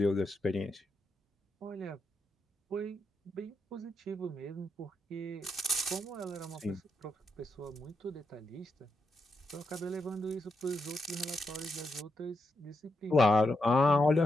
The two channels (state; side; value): normal; both; correlation 0.83